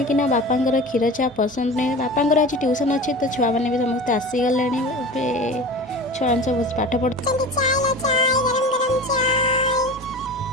ନା ବାପାଙ୍କର କ୍ଷୀର ଚା ପସନ୍ଦ ନୁହେଁ। ବାପାଙ୍କର ଆଜି ଟ୍ୟୁସନ୍ ଅଛି ତ ଛୁଆମାନେ ବି ସମସ୍ତେ ଆସିଗଲେଣି। ଏବେ ଛୁଆମାନେ ସବୁ ପାଠ ପଢ଼ୁଛନ୍ତି।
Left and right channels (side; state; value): both; normal; correlation 0.34